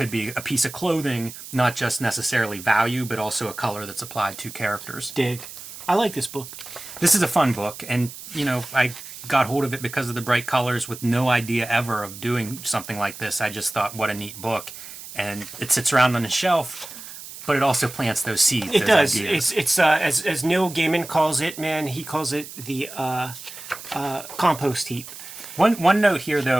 be a piece of clothing, not just necessarily value, but also a color that's applied to characters. Dig. I like this book. This is a fun book, and, you know, I got hold of it because of the bright colors with no idea ever of doing something like this. I just thought, what a neat book. And it sits around on the shelf, but it also plants those seeds. It does. Ideas. It's as Neil Gaiman calls it, man, he calls it the compost heap. One note here,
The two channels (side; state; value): right; noise; hiss, 13 dB below the sound